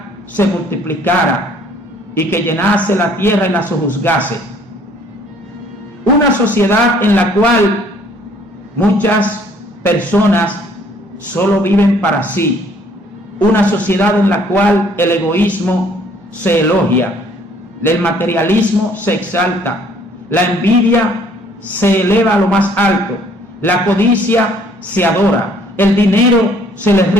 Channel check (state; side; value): normal; both; correlation 0.60